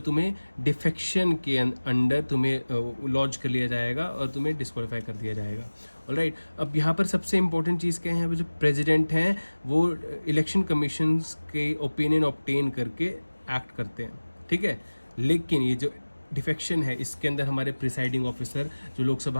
डिफेक्शन के अंडर तुम्हें लॉन्च कर लिया जाएगा और तुम्हें डिस्क्वालीफाई कर दिया जाएगा, ऑलराइट। अब यहाँ पर सबसे इंपॉर्टेंट चीज़ क्या है, यहाँ पर जो प्रेसिडेंट हैं वो इलेक्शन कमीशन के ओपिनियन ऑब्टेन करके एक्ट करते हैं, ठीक है। लेकिन ये जो डिफेक्शन है, इसके अंदर हमारे प्रिसाइडिंग ऑफिसर जो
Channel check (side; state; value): both; inverted; correlation -1.00